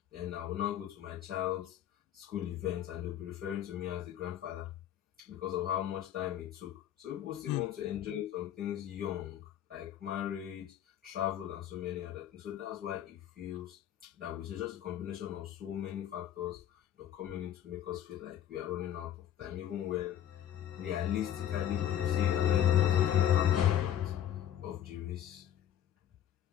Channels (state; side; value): quieter; right; 10.8 dB